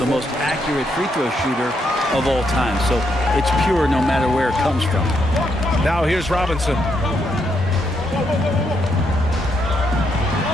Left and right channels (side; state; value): both; normal; correlation 0.77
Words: most accurate free throw shooter of all time, so it's pure no matter where it comes from. Now here's Robinson.